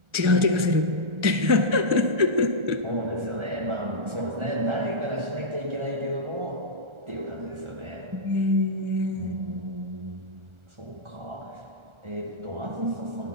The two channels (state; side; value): late; left; 1.4 ms